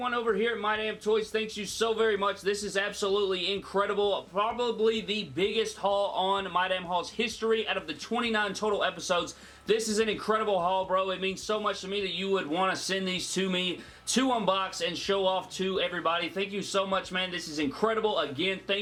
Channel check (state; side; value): identical; both; correlation 1.00